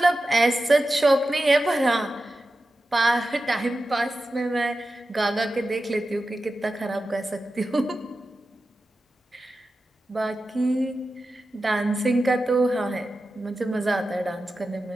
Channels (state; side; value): normal; both; correlation 0.92